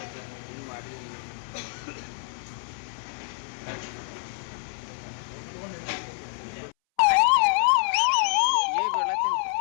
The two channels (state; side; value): silent; right; 60 dB below the other